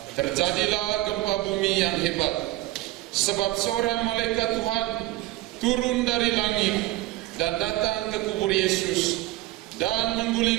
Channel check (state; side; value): quieter; left; 17.5 dB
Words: terjadilah gempa bumi yang hebat, sebab seorang malaikat Tuhan turun dari langit dan datang ke kubur Yesus dan